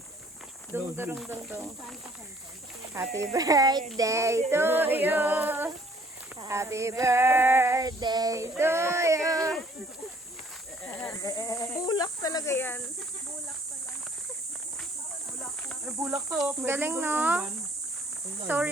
Dung, dung, dung, dung. Happy birthday to you. Happy birthday to you. Bulak talaga yan. Ay, bulak to. Galing, no? So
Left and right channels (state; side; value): normal; both; correlation 0.59